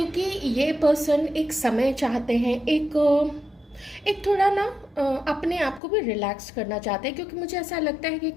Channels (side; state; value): right; drops out; at 5.8 s